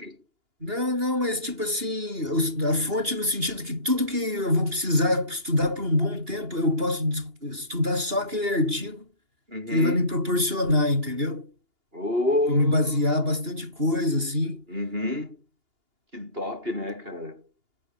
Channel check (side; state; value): left; late; 2.8 ms